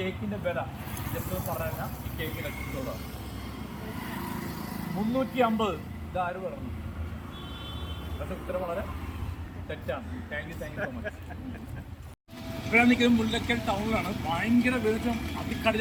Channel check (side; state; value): both; identical; correlation 1.00